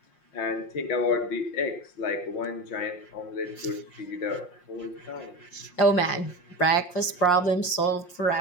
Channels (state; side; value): late; right; 5.6 ms